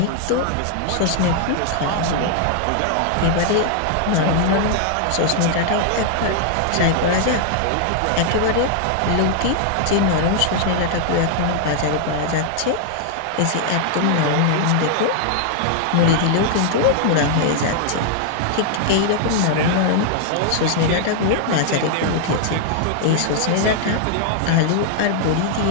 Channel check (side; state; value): both; different; correlation 0.00